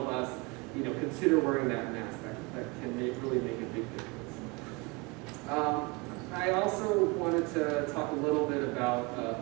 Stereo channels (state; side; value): quieter; left; 27.2 dB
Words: bus, consider wearing that mask. That can really make a big difference. I also wanted to talk a little bit about